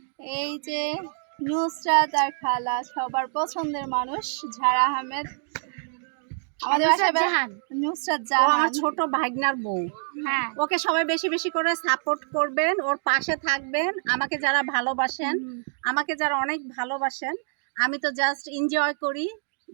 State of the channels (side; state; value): left; silent; digital silence